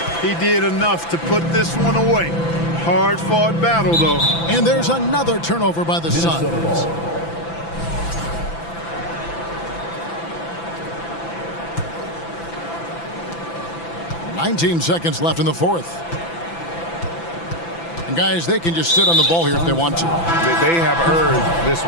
He did enough to put this one away. Hard-fought battle, though. And there's another turnover by the Suns. 19 seconds left in the fourth. And guys, they can just sit on the ball here if they want to. They have earned this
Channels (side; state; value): right; late; 6.0 ms